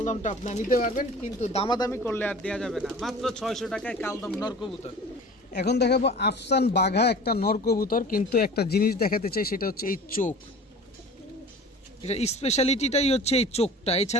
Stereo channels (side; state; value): both; normal; correlation 0.41